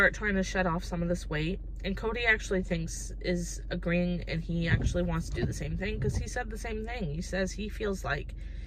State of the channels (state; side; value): identical; both; correlation 1.00